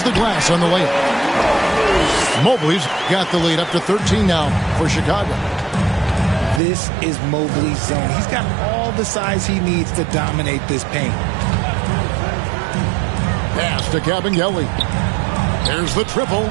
the glass on the layup. Mobley's got the lead up to 13 now for Chicago. This is Mobley's zone. He's got all the size he needs to dominate this paint. Pass to Kabengele. There's the triple.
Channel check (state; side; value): drops out; left; at 6.6 s